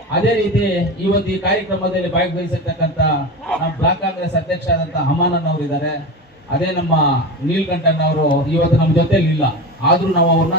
ಅದೇ ರೀತಿ ಇವತ್ತು ಈ ಕಾರ್ಯಕ್ರಮದಲ್ಲಿ ಭಾಗವಹಿಸಿರ್ತಕ್ಕಂಥ ನಮ್ಮ ಬ್ಲಾಕ್ ಕಾಂಗ್ರೆಸ್ ಅಧ್ಯಕ್ಷ ಆದಂಥ ಹಮಾನನ್ ಅವರು ಇದ್ದಾರೆ. ಅದೇ ನಮ್ಮ ನೀಲ್ಕಂಠನ್ ಅವರು ಇವತ್ತು ನಮ್ಮ ಜೊತೆಲಿ ಇಲ್ಲ, ಆದ್ರೂ ನಾವು ಅವ್ರನ್ನ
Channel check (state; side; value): normal; both; correlation 0.25